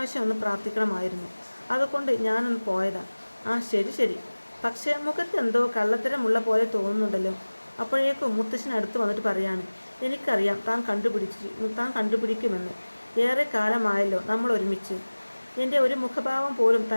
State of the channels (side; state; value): both; inverted; correlation -1.00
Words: ഒന്ന് പ്രാർത്ഥിക്കണമായിരുന്നു, അതുകൊണ്ട് ഞാനൊന്ന് പോയതാ. ശരി, പക്ഷേ മുഖത്ത് എന്തോ കള്ളത്തരമുള്ള പോലെ തോന്നുന്നുണ്ടല്ലോ. അപ്പോഴേക്കും മുത്തശ്ശൻ അടുത്ത് വന്നിട്ട് പറയാണ്, എനിക്കറിയാം താൻ കണ്ടുപിടിക്കുമെന്ന്. ഏറെ കാലമായല്ലോ നമ്മൾ ഒരുമിച്ച്. എൻ്റെ ഒരു മുഖഭാവം പോലും